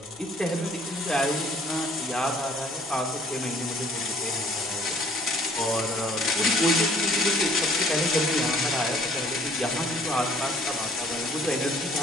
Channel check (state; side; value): normal; both; correlation 0.57